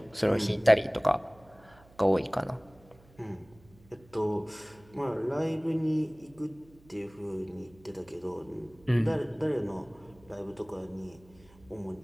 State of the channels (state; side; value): noise; right; hum, 26 dB below the sound